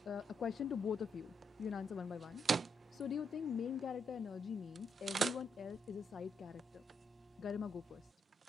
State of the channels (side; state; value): both; normal; correlation 0.79